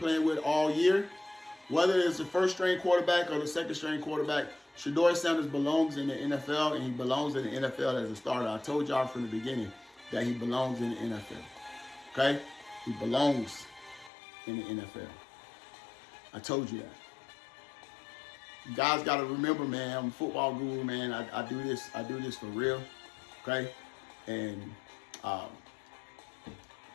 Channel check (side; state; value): right; drops out; at 14.1 s